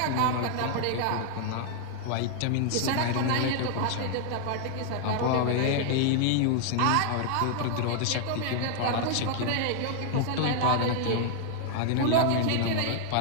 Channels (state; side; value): different; both; correlation 0.00